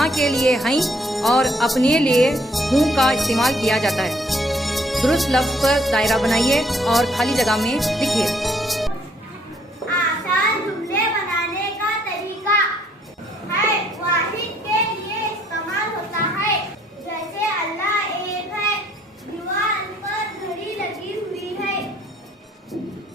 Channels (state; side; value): normal; both; correlation 0.65